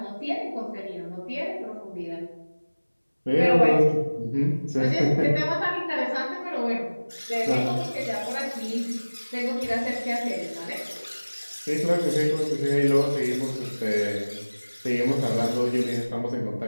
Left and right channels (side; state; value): both; inverted; correlation -1.00